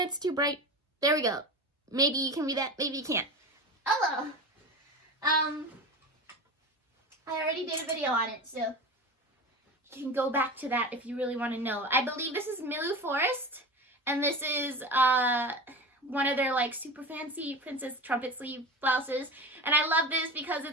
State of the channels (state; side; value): normal; both; correlation 0.29